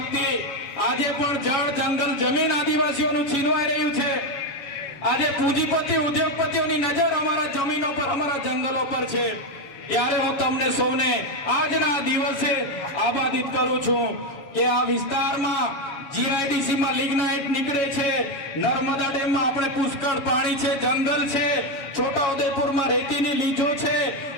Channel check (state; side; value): late; right; 7.2 ms